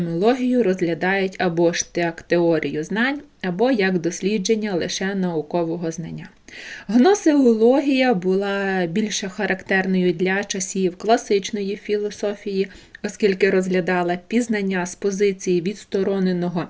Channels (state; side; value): identical; both; correlation 1.00